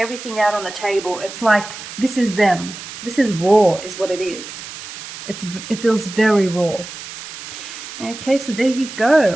out on the table. It's like, this is them. This is raw, is what it is. It feels very raw. Okay, so there you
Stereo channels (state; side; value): noise; right; hiss, 12 dB below the sound